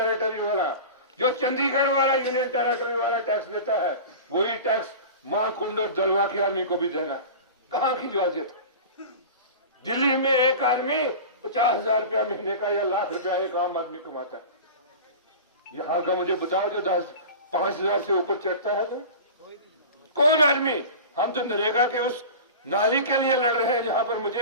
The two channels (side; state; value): both; inverted; correlation -0.33